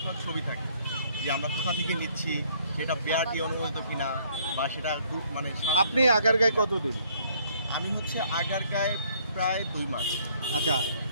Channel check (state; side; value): inverted; both; correlation -0.63